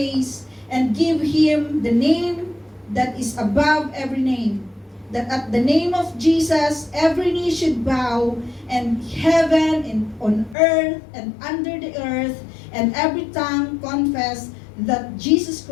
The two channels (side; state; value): right; drops out; at 10.6 s